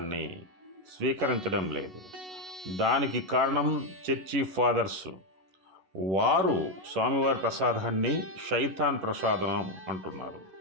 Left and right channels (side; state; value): left; late; 11 ms